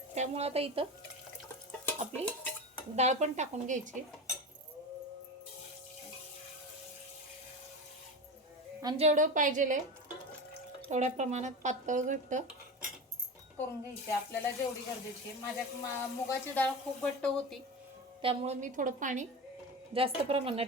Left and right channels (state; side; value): normal; both; correlation 0.26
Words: त्यामुळे आता इथं आपली डाळ पण टाकून घ्यायची आणि जेवढं पाहिजे तेवढ्या प्रमाणात पातळ घट्ट करून घ्यायची आपल्याला जेवढी गरजेची आहे. माझ्या मुगाची डाळ खूप घट्ट होती, त्यामुळे मी थोडं पाणी जास्त